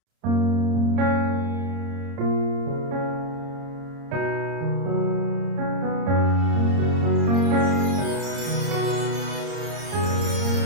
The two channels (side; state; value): left; late; 30 ms